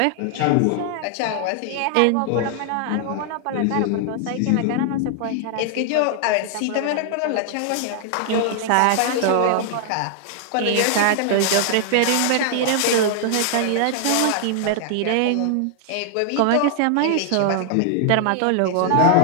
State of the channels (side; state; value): both; different; correlation 0.00